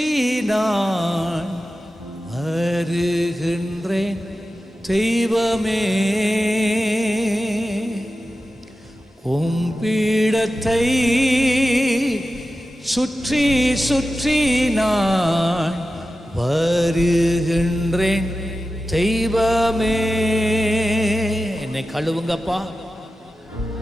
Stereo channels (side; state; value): both; normal; correlation 0.93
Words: நான் வருகின்றேன் தெய்வமே. பீடத்தை சுற்றி சுற்றி நான் வருகின்றேன் தெய்வமே. என்னை கழுவுங்கப்பா,